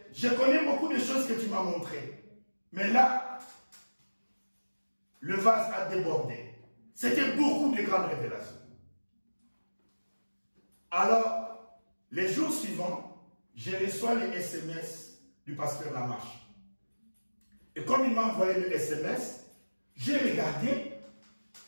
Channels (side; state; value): both; inverted; correlation -1.00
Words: je connais beaucoup de choses que tu m'as montrées. Mais là, le vase a débordé. C'était beaucoup de grandes révélations. Alors, les jours suivants, je reçois les SMS du pasteur Lamarche. Et comme il m'a envoyé le SMS, j'ai regardé,